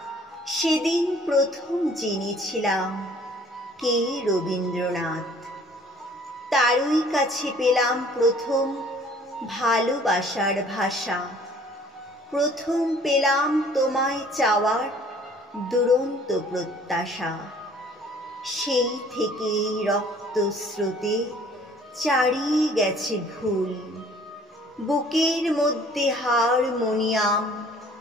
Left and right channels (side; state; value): both; normal; correlation 0.55